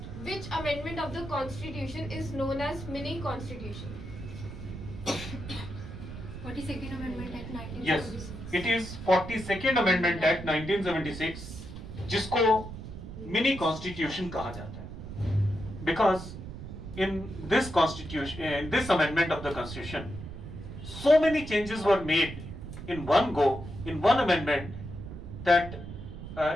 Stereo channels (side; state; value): right; noise; rumble, 10 dB below the sound